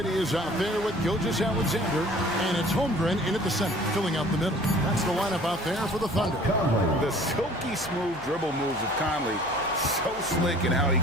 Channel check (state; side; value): noise; left; hum, 22 dB below the sound